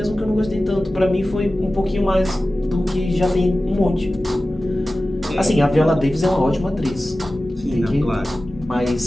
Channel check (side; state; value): both; normal; correlation 0.96